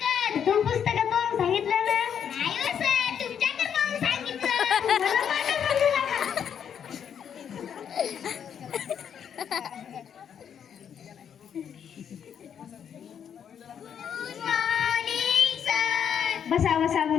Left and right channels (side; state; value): right; quieter; 8.3 dB